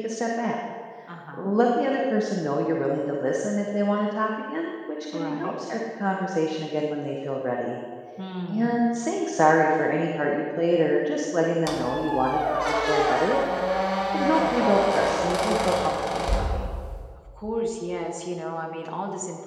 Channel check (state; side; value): identical; both; correlation 1.00